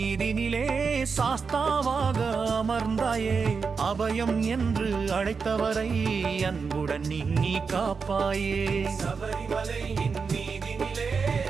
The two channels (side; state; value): left; quieter; 5.3 dB